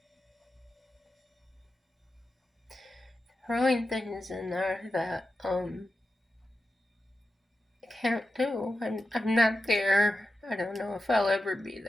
Throwing things in there that I can't do. I'm not there. I don't know if I'll ever be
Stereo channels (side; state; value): both; normal; correlation 0.91